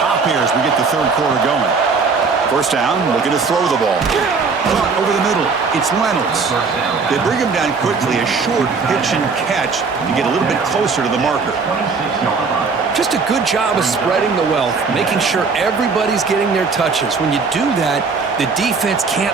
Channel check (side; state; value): left; quieter; 4.8 dB